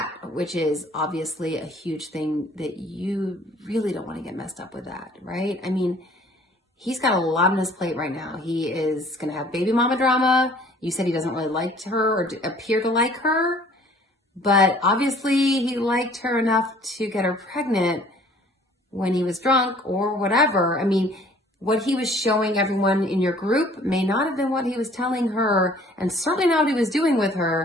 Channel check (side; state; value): both; normal; correlation 0.54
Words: which is obviously a huge thing that you really don't want to get messed up with that, right? I mean, he's got a lot on his plate right now. He is going to have baby mama drama. You said he doesn't really like her or appear to like her, but obviously he liked her enough to get her pregnant when he was drunk or whatever. I mean, what he was showing everyone in your group may not have been what he was telling her, and certainly not what he was doing with